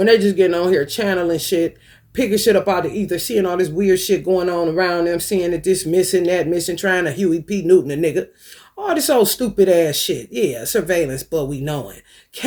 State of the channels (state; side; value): identical; both; correlation 1.00